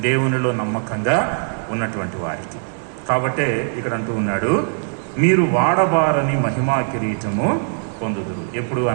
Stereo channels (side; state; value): left; silent; digital silence